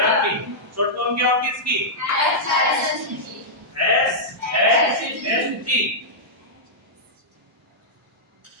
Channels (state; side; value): normal; both; correlation -0.10